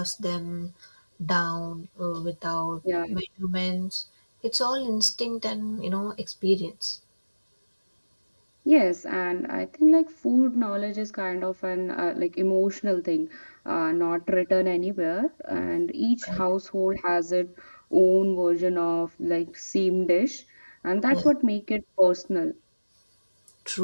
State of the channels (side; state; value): both; inverted; correlation -1.00